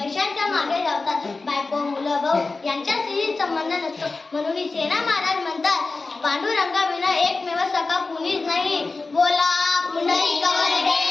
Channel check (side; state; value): right; quieter; 3.7 dB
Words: मागे धावतात. बायको मुलं भाऊ यांच्याशी संबंध नसतो. म्हणून सेना महाराज म्हणतात पांडुरंगाविना एकमेव सखा कुणीच नाही. बोला पुंडलिक